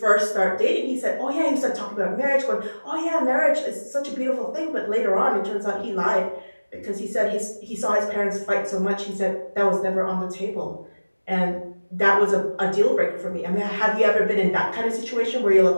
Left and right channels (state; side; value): inverted; both; correlation -1.00